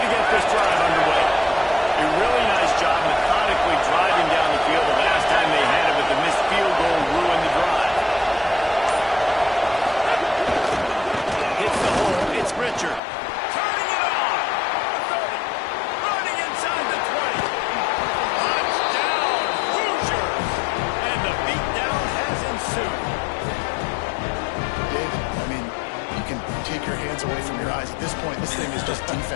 get this drive underway. A really nice job methodically driving down the field the last time they had it, but the missed field goal ruined the drive. Hits the hole. It's Richard. Turning it on. 30. Running inside the 20. Touchdown, Hoosiers. And the beatdown has ensued. David, I mean, you can take your hands away from your eyes. At this point, this thing is just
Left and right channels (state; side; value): drops out; right; at 13.0 s